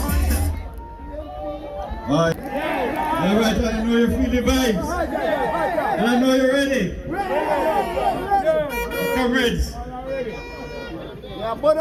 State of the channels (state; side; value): identical; both; correlation 1.00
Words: All right, I know you feel the vibes, and I know you're ready. Comrades,